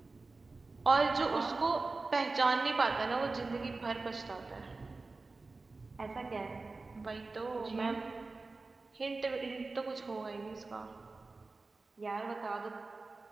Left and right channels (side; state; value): left; quieter; 3.6 dB